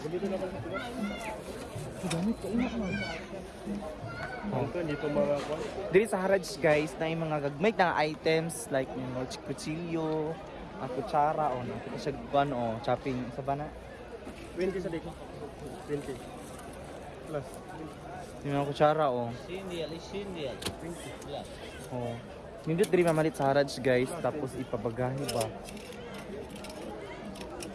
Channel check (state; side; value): identical; both; correlation 1.00